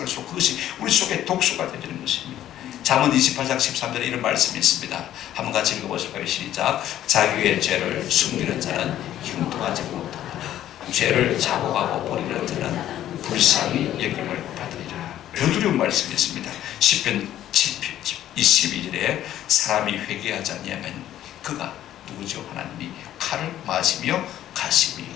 그것이 우리 속에 독소가 되는 것입니다. 잠언 28장 13절에 이런 말씀이 있습니다. 한번 같이 읽어보실까요? 시작. 자기의 죄를 숨기는 자는 형통하지 못하고 죄를 자복하고 버리는 자는 불쌍히 여김을 받으리라. 더 두려운 말씀이 있습니다. 시편 22절에 사람이 회개하지 아니하면 그가 누구죠? 하나님이 칼을 마시며 가시며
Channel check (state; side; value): quieter; right; 12.2 dB